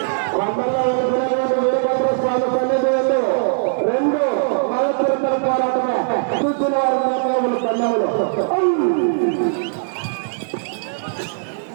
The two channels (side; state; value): left; silent; digital silence